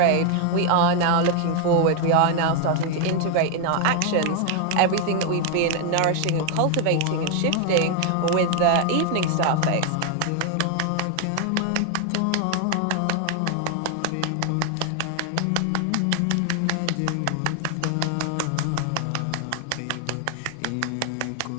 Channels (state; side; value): different; both; correlation 0.00